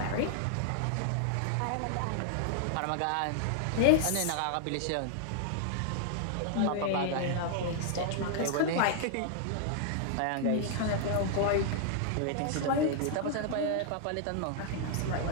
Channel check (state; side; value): different; both; correlation 0.00